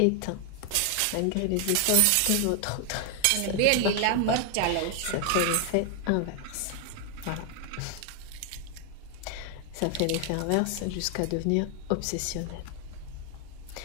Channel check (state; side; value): different; both; correlation 0.00